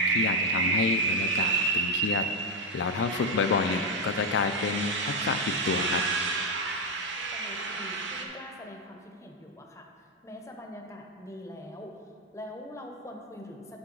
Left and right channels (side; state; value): both; normal; correlation 0.04